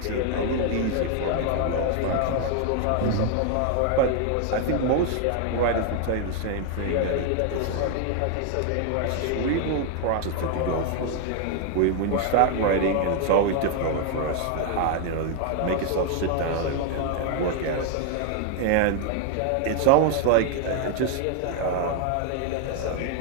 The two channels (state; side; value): different; both; correlation 0.00